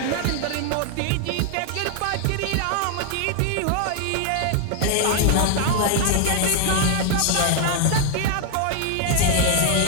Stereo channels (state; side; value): different; both; correlation 0.00